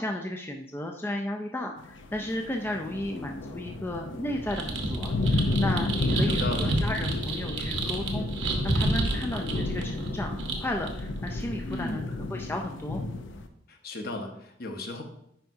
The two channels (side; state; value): both; normal; correlation 0.71